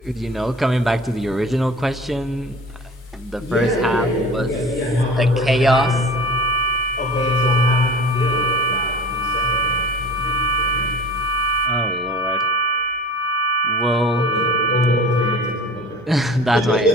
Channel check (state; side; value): normal; both; correlation 0.41